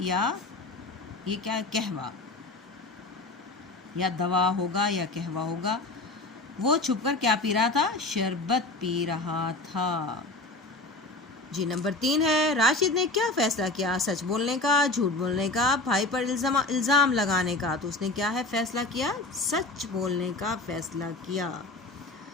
ये क्या, कहवा, या दवा होगा या कहवा होगा। वो छुपकर क्या पी रहा था? शरबत पी रहा था। जी नंबर 3 है, राशिद ने क्या फैसला किया? सच बोलने का, झूठ बोलने का, भाई पर इल्ज़ाम लगाने का। तो उसने क्या है फैसला किया? सच बोलने का फैसला किया।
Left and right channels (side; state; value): right; quieter; 3.1 dB